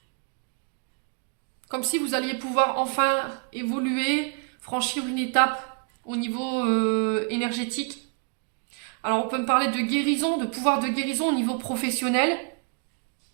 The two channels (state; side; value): quieter; left; 37.5 dB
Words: Comme si vous alliez pouvoir enfin évoluer, franchir une étape au niveau énergétique. Alors, on peut me parler de guérison, de pouvoir de guérison au niveau professionnel.